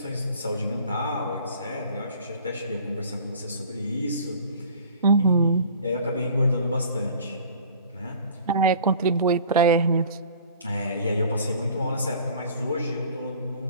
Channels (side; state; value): both; inverted; correlation -0.47